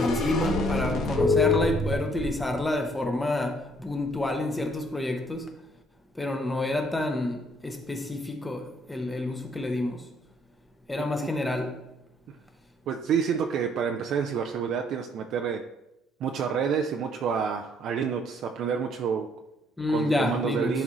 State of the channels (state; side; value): normal; both; correlation 0.64